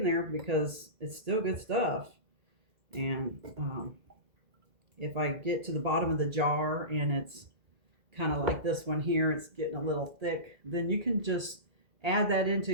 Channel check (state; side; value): late; left; 2.0 ms